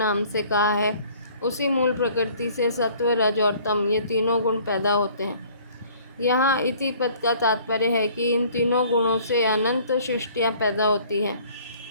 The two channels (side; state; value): both; inverted; correlation -0.55